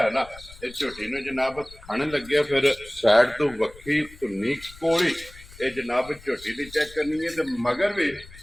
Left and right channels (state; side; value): noise; left; rumble, 20 dB below the sound